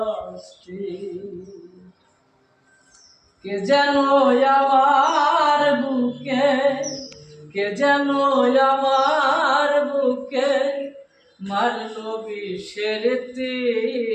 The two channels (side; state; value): both; identical; correlation 1.00